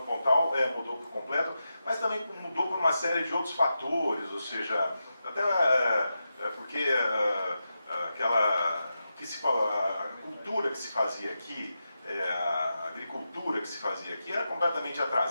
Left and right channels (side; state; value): both; inverted; correlation -0.89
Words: Pontal mudou por completo, mas também mudou por uma série de outros fatores, ou seja, até porque a cultura que se fazia aqui, a agricultura que se fazia aqui era completamente